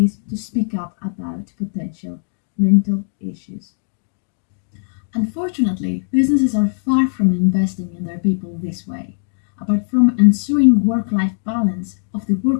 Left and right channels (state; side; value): silent; right; digital silence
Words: to speak up about potential mental issues. Unfortunately, businesses are far from investing in their people this way. Apart from ensuring work-life balance of the